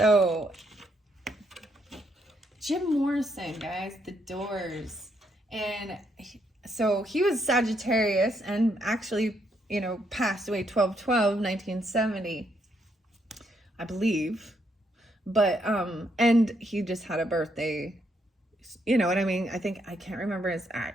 Jim Morrison, guys, The Doors. And so he was Sagittarius and actually, you know, passed away 12/12/1970, I believe. But, and he just had a birthday, you know what I mean? I think, I can't remember his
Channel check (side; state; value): both; normal; correlation 0.75